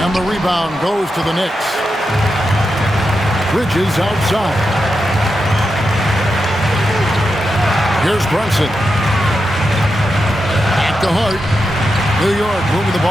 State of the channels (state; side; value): normal; both; correlation 0.88